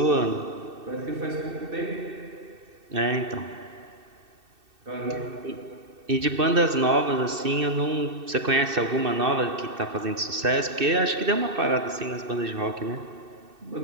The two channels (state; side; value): late; left; 2.6 ms